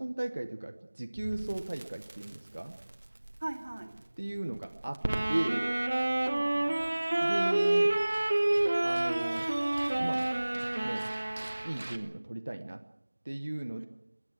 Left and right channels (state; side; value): inverted; both; correlation -1.00